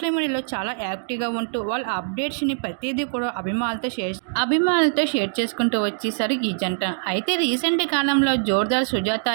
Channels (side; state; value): left; silent; digital silence